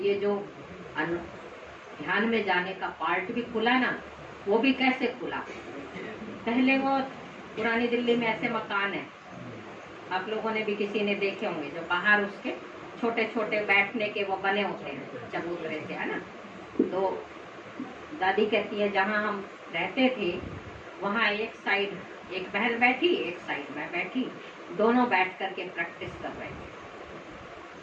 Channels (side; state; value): both; identical; correlation 1.00